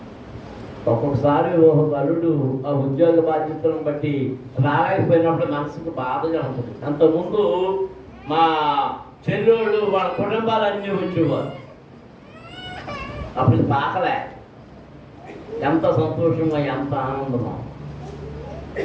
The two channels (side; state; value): both; identical; correlation 1.00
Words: ఒక్కొక్కసారి ఒక బలుడు ఆ ఉద్యోగ బాధ్యతలను బట్టి రాలేకపోయినప్పుడు మనసుకు బాధగా ఉంటుంది. అంతకుముందు మా చెల్లెళ్ళు వాళ్ళ కుటుంబాలన్నీ వచ్చేవారు. అప్పుడు పాకలే. ఎంత సంతోషమో, ఎంత ఆనందమో.